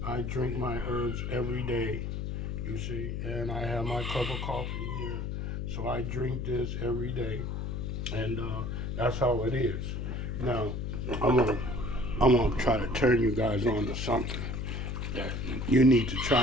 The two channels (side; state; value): left; noise; hum, 3 dB below the sound